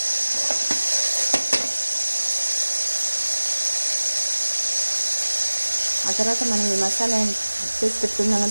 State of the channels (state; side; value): inverted; both; correlation -1.00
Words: ఆ తర్వాత మనం ఈ మసాలా చేసి పెట్టుకుందాం